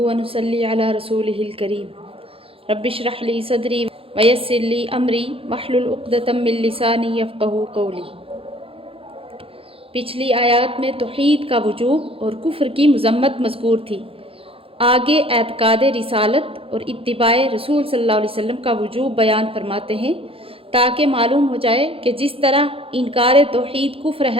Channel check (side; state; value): left; late; 0.27 ms